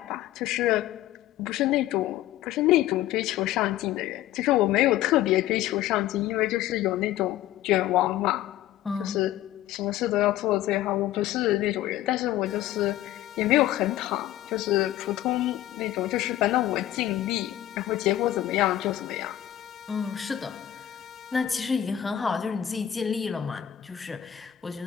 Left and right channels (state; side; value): quieter; right; 13.1 dB